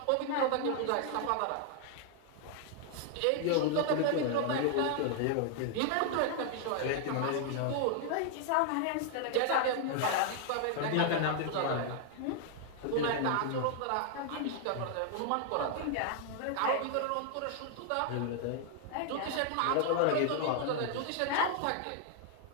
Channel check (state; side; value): different; both; correlation 0.00